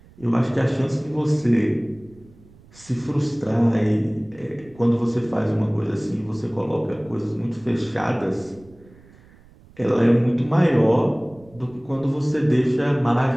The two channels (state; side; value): noise; right; rumble, 25 dB below the sound